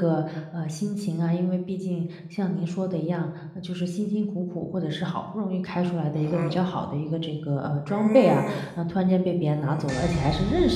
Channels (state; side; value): identical; both; correlation 1.00